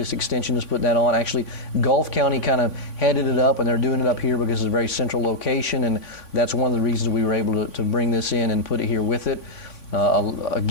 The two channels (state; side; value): late; right; 3.5 ms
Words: Extension is putting that on. Actually, Gulf County kind of headed it up, and they're doing it up here because it's a very central location, and that's one of the reasons we were able to bring this in and put it here with it.